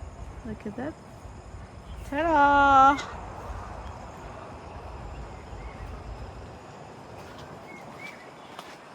Look at that. Ta-da!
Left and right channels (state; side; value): identical; both; correlation 1.00